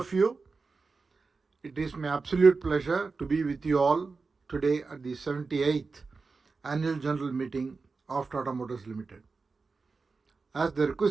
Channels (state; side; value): quieter; left; 4.3 dB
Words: you. It is my absolute pleasure to be with you all today at the 78th Annual General Meeting of Tata Motors Limited. As the